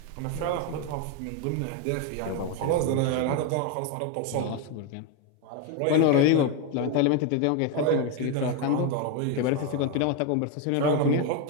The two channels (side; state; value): both; different; correlation 0.02